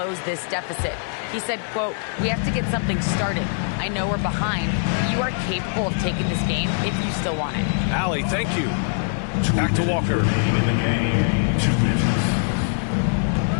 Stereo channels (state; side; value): silent; right; 64 dB below the other